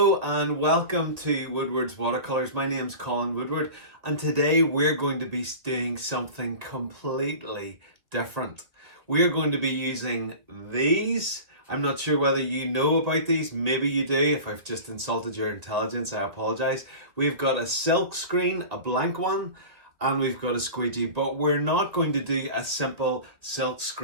and welcome to Woodward's Watercolours. My name's Colin Woodward and today we're going to be doing something completely different. We're going to be using these. I'm not sure whether you know about these, maybe you do. If I've just insulted your intelligence, I apologise. We've got a silk screen, a blank one, and we've got a squeegee, but we're not going to do a simple silk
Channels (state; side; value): late; left; 2.1 ms